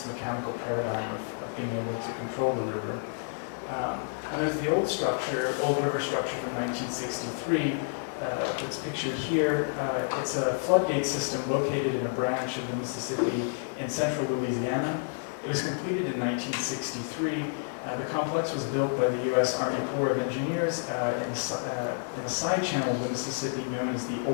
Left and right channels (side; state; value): right; silent; 58 dB below the other